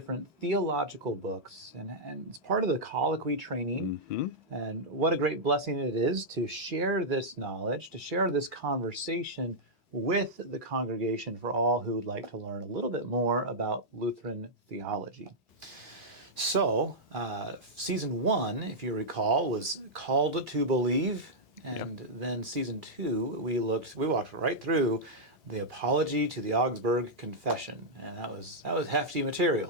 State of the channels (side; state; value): both; normal; correlation -0.08